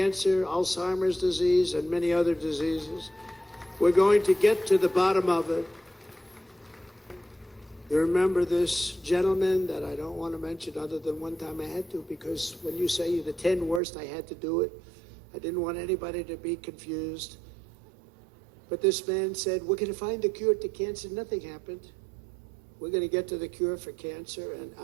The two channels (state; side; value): drops out; left; at 13.8 s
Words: Alzheimer's disease, and many other diseases. We're going to get to the bottom of it. You remember this gentleman that I don't want to mention other than one time I had to, because when you say the 10 worst, I had to do it. I didn't want anybody to be confused. But this man said, we're going to find a cure to cancer. Nothing happened. We're going to get to the cure for cancer and